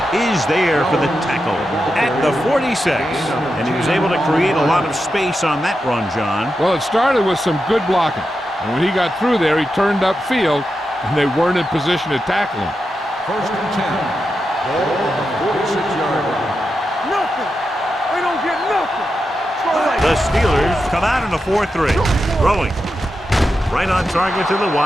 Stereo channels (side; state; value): both; normal; correlation 0.88